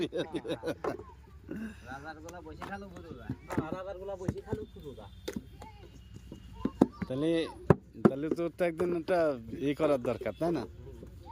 রাজার গুলা বসে খালু বুড়ুরা রাজার গুলা বসে খালু বুড়ুরা তাহলে তাহলে তো একদিন একটা করার দরকার তাই না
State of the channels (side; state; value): both; identical; correlation 1.00